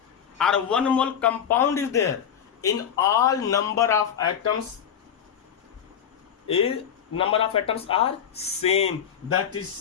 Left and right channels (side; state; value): right; quieter; 8.4 dB